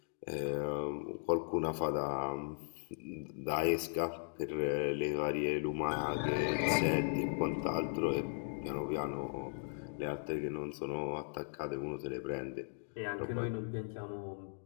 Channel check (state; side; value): silent; right; digital silence